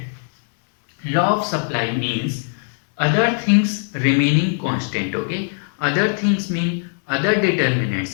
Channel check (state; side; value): silent; right; digital silence